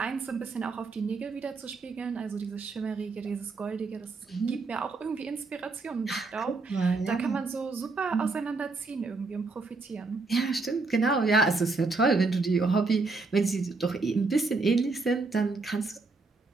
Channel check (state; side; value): quieter; left; 3.8 dB